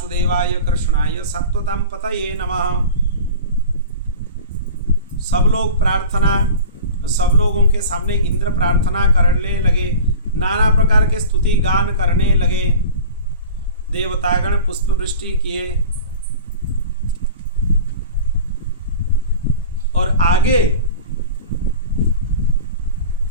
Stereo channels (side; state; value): both; inverted; correlation -0.36